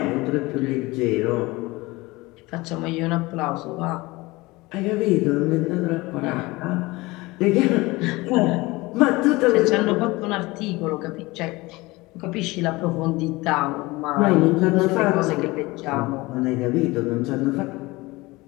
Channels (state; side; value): quieter; right; 21.8 dB